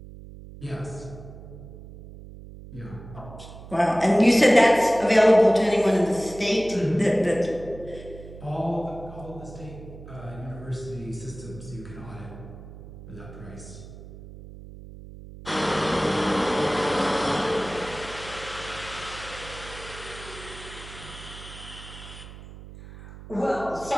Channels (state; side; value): noise; right; hum, 15 dB below the sound